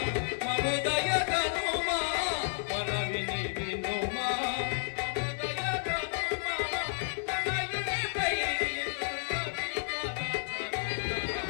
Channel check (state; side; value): silent; right; digital silence